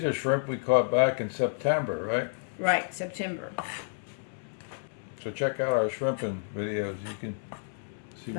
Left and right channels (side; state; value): right; silent; 58 dB below the other